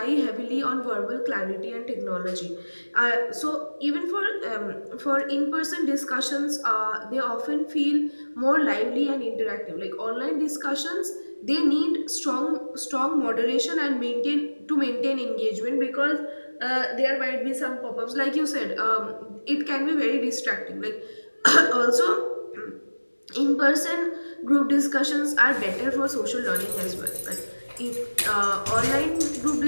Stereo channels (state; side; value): inverted; both; correlation -1.00